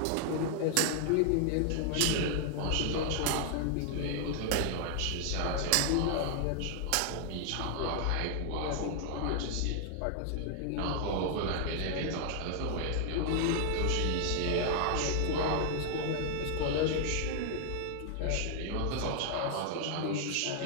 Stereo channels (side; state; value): both; different; correlation 0.00